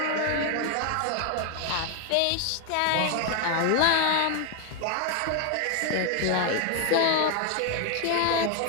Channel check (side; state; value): both; different; correlation 0.01